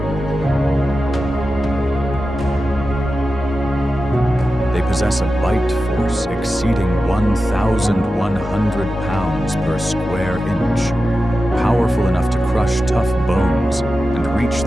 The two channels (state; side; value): normal; both; correlation 0.92